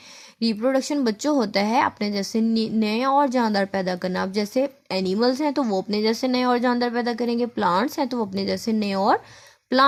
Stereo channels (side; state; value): both; identical; correlation 1.00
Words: रिप्रोडक्शन बच्चों होता है अपने जैसे नए और जानदार पैदा करना। अब जैसे एनिमल्स हैं तो वो अपने जैसे नए और जानदार पैदा करेंगे, प्लांट्स हैं तो वो अपने जैसे नए और